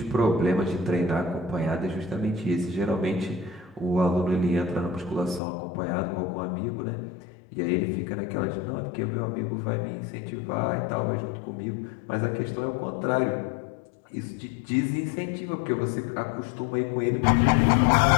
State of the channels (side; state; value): right; drops out; at 5.4 s